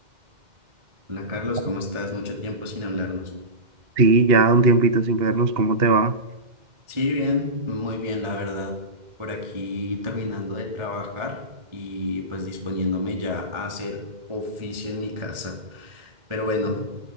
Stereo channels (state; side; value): late; left; 2.1 ms